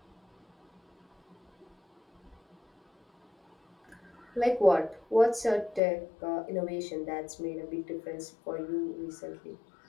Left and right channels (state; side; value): drops out; right; at 5.8 s